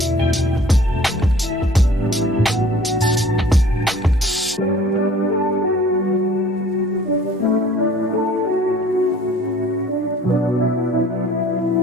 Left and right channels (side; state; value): both; normal; correlation 0.50